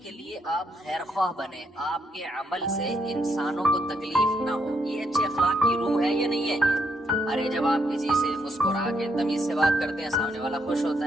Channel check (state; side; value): normal; both; correlation 0.75